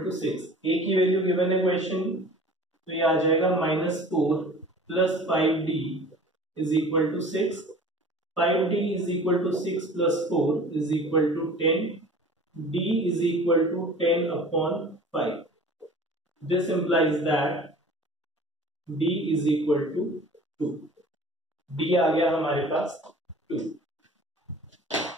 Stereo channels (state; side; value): normal; both; correlation 0.44